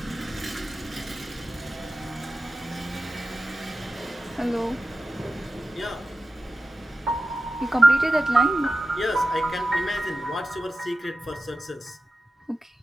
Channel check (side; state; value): both; normal; correlation 0.93